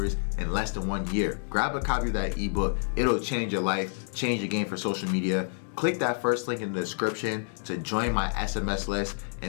in less than 1 year. Grab a copy of that ebook. It'll change your life, change your game for social media. Click that first link in the description to join my SMS list,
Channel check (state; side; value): silent; right; digital silence